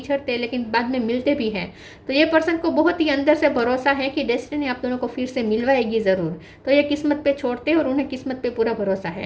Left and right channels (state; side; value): identical; both; correlation 1.00